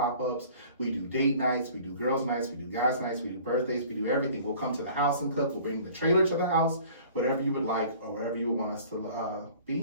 We do date nights, we do girls nights, we do guys nights, we do birthdays, we do everything. We'll come to the house and cook. We'll bring the trailer to the house. Whatever you would like or wherever you would want us to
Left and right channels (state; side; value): inverted; both; correlation -0.48